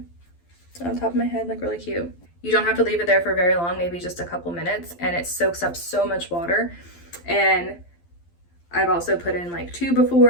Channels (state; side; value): late; right; 12 ms